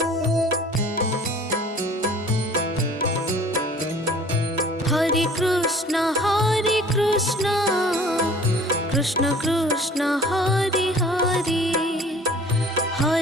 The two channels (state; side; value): normal; both; correlation 0.49